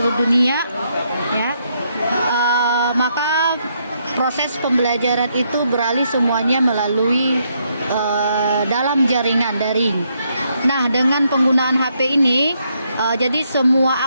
dunia ya, maka proses pembelajaran itu beralih semuanya melalui dalam jaringan daring. Nah, dengan penggunaan HP ini, jadi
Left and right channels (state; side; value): inverted; both; correlation -0.75